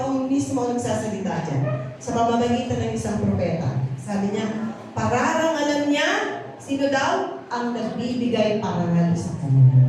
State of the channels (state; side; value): identical; both; correlation 1.00